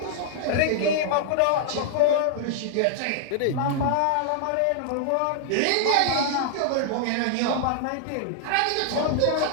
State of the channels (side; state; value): both; different; correlation -0.01